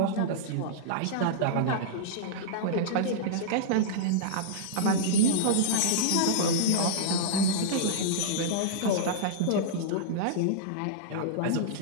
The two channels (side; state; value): both; different; correlation -0.02